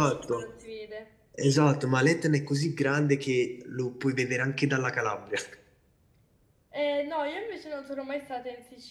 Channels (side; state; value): both; identical; correlation 1.00